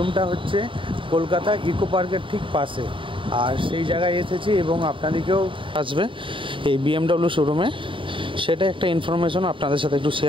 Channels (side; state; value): left; late; 0.25 ms